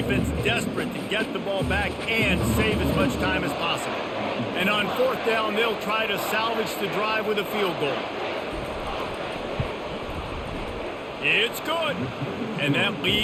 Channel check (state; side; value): identical; both; correlation 1.00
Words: desperate to get the ball back and save as much time as possible. And on 4th down, they'll try to salvage the drive with a field goal. It's good, and that